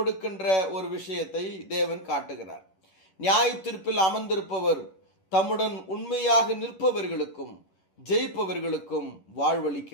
ஒரு விஷயத்தை தேவன் காட்டுகிறார். நியாய தீர்ப்பில் அமர்ந்திருப்பவர் தம்முடன் உண்மையாக நிற்பவர்களுக்கும் ஜெயிப்பவர்களுக்கும்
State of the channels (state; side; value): late; right; 11 ms